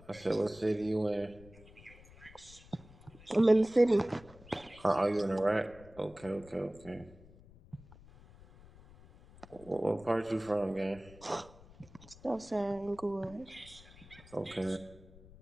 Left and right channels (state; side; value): noise; left; rumble, 21 dB below the sound